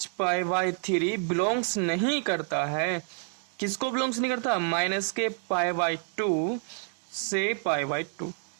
बिलोंग्स नहीं करता है। किसको बिलोंग्स नहीं करता, -π/2 से π/2।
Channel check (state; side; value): silent; left; 58 dB below the other